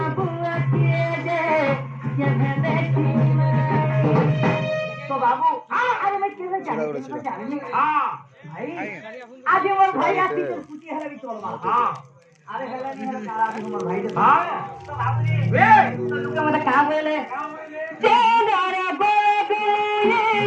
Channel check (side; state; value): both; identical; correlation 1.00